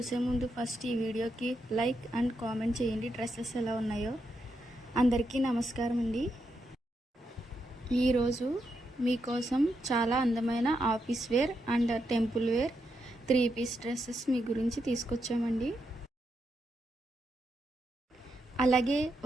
ముందు ఫస్ట్ ఈ వీడియోకి లైక్ అండ్ కామెంట్ చేయండి. డ్రెస్సెస్ ఎలా ఉన్నాయో. అందరికీ నమస్కారం అండి. ఈరోజు మీకోసం చాలా అందమైన office wear and temple wear 3 piece dresses మీ గురించి తీసుకొచ్చామండి. అలాగే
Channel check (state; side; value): normal; both; correlation 0.83